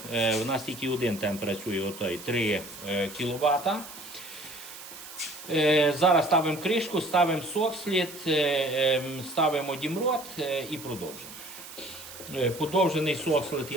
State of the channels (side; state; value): right; noise; hiss, 14 dB below the sound